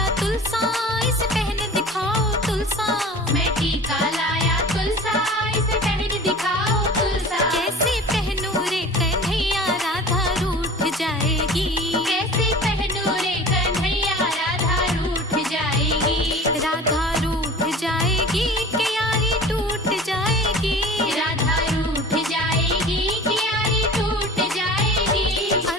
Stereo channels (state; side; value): normal; both; correlation 0.40